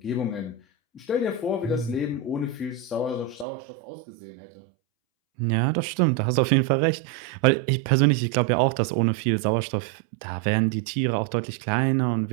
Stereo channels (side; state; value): left; drops out; at 3.5 s